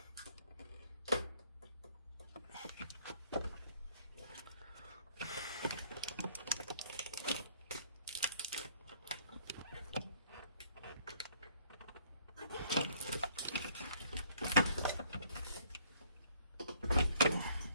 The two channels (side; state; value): both; inverted; correlation -0.62